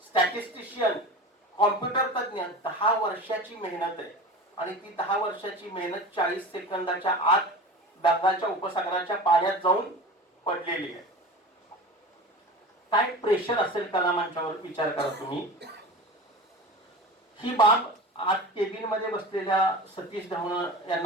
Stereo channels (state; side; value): normal; both; correlation 0.33